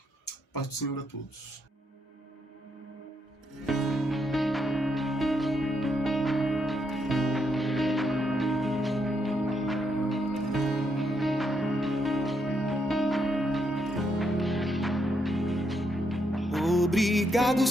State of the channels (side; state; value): both; normal; correlation 0.78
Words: Paz do Senhor a todos. Obrigado,